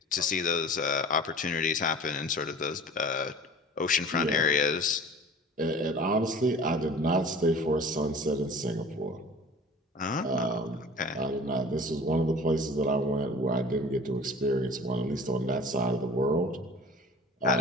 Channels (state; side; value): normal; both; correlation 0.42